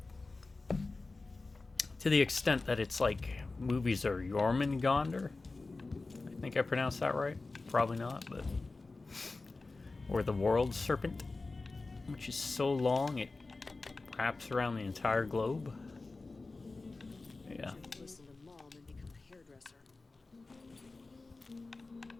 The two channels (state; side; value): quieter; right; 3.5 dB